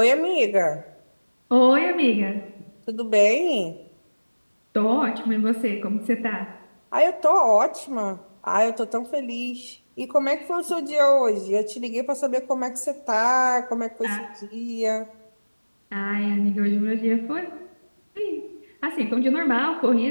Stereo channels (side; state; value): both; inverted; correlation -1.00